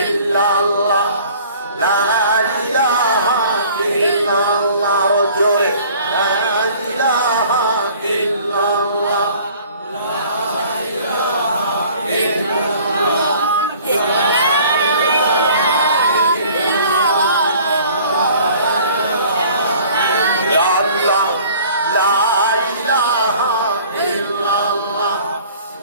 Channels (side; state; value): both; inverted; correlation -0.51